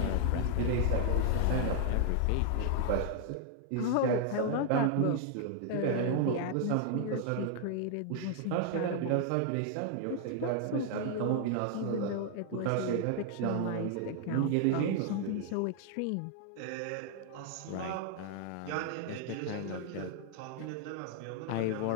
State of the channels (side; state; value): both; different; correlation 0.00